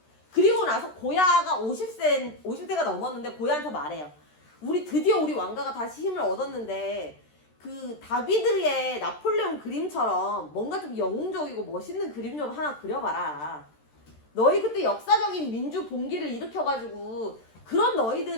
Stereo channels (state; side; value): late; right; 13 ms